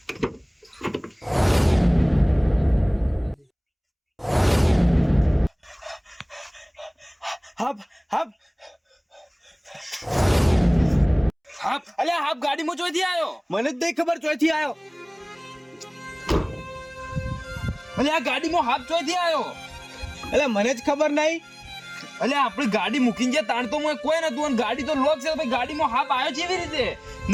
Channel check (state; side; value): identical; both; correlation 1.00